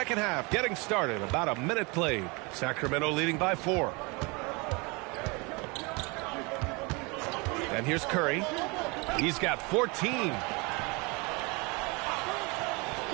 half getting started. About a minute played. Sacramento leading by 4. And here's Curry. He's got 14.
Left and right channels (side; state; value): left; quieter; 28.1 dB